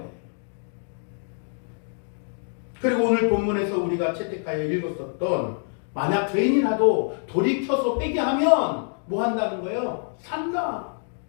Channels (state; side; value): silent; right; 56 dB below the other